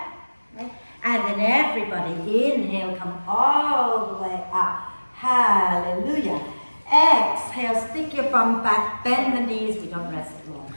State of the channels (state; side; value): inverted; both; correlation -1.00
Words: Okay? And then everybody, inhale, come all the way up. Hallelujah. Exhale, stick your bum back, bend the knees, we don't rest long.